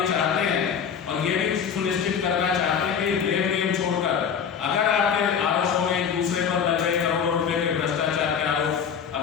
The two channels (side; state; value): right; quieter; 7.3 dB